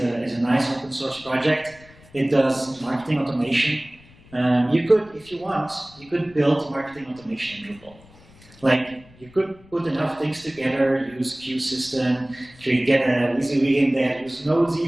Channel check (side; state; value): left; noise; rumble, 25 dB below the sound